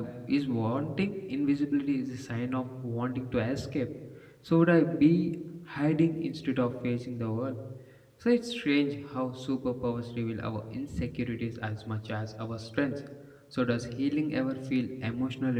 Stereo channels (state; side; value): identical; both; correlation 1.00